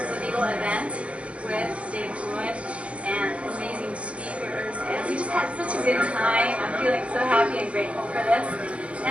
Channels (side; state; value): left; late; 0.062 ms